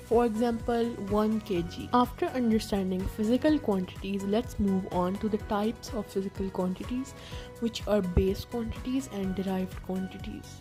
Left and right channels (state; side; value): identical; both; correlation 1.00